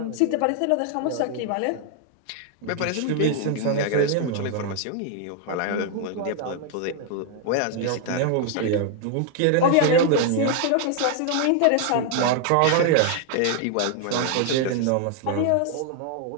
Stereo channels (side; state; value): both; different; correlation 0.00